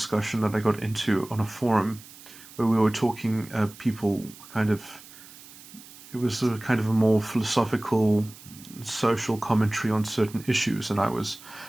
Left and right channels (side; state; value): right; noise; hiss, 19 dB below the sound